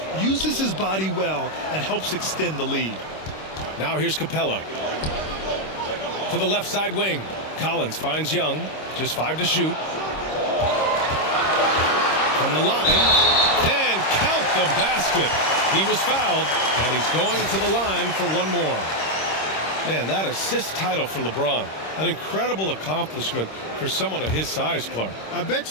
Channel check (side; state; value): right; late; 26 ms